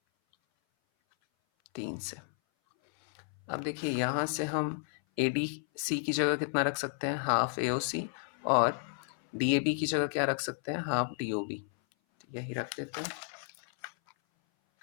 3 से। अब देखिए यहाँ से हम ADC की जगह कितना रख सकते हैं, हाफ AOC, और DAB की जगह क्या रख सकते हैं, हाफ DOB। तो यही रख देते हैं।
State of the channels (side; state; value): right; silent; 56 dB below the other